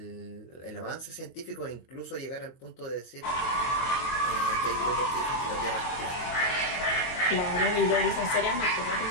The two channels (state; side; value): late; right; 23 ms